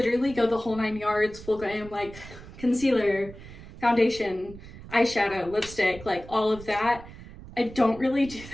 go the whole 9 yards, full glam, like concealer, foundation, eyeshadow, lipstick, like all of that. I don't really do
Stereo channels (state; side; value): noise; right; rumble, 16 dB below the sound